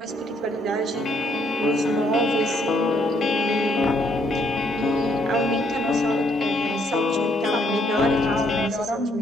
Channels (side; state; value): both; normal; correlation 0.70